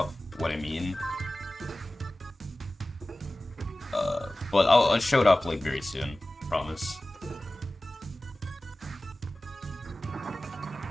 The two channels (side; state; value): both; normal; correlation 0.97